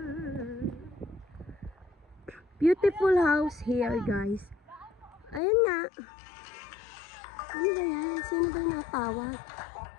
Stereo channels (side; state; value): right; drops out; at 5.4 s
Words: Beautiful house here, guys. Ayan nga. Ano ba yan? Sino ba yung natawag?